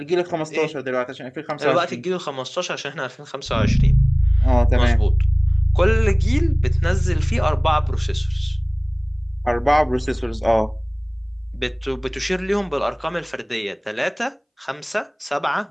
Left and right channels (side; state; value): both; identical; correlation 1.00